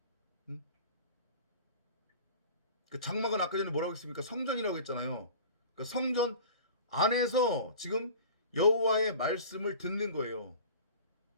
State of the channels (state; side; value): inverted; both; correlation -0.40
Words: 그러니까 그 장막은 아까 전에 뭐라고 했습니까? 성전이라고 했잖아요. 그러니까 성전 안에서 지금 여호와의 말씀을 듣는 거예요.